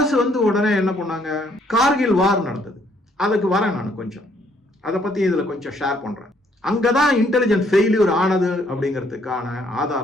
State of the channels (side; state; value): both; normal; correlation 0.67